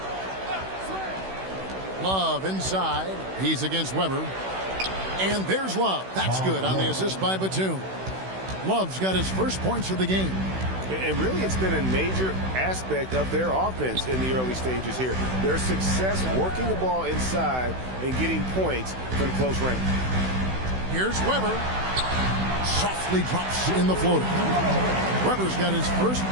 Love inside. He's against Weber. And there's Love. That's good on the assist by Batum. Love's got his first points of the game. And really, it's been a major aspect of their offense in the early stages here. Their success working the ball inside and getting points from close range. Here's Weber. Softly drops in the floater. Weber's got his first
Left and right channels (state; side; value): late; left; 16 ms